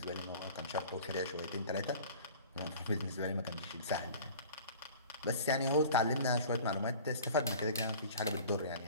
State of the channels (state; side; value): inverted; both; correlation -0.43